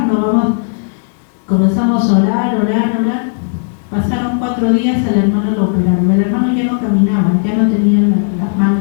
comenzamos a orar. Pasaron 4 días, al hermano lo operaron. El hermano ya no caminaba, ya no tenía las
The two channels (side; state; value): right; silent; digital silence